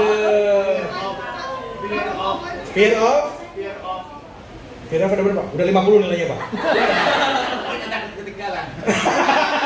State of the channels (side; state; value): both; identical; correlation 1.00